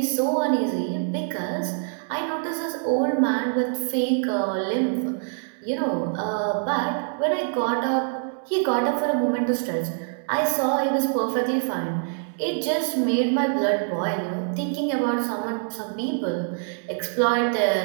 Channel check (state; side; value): silent; left; 62 dB below the other